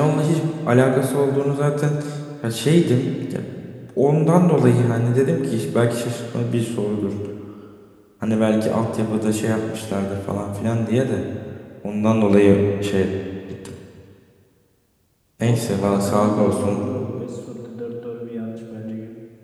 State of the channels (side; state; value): both; identical; correlation 1.00